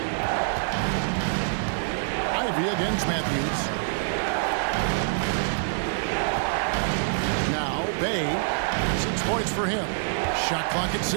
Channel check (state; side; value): silent; left; 59 dB below the other